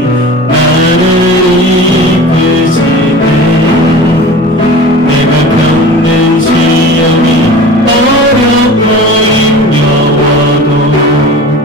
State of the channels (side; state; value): both; normal; correlation 0.37